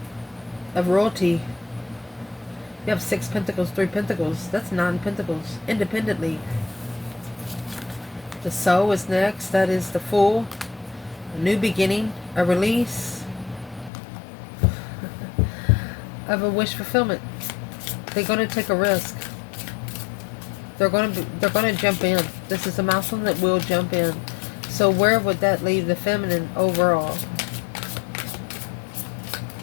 of royalty. You have 6 Pentacles, 3 Pentacles. That's 9 Pentacles independently. The Soul is next. That is the Fool. A new beginning. A release of a wish fulfillment. They're going to take a risk. They're going to jump in. This is a masculine that will jump in. So where would that leave the feminine overall?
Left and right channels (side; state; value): right; drops out; at 13.9 s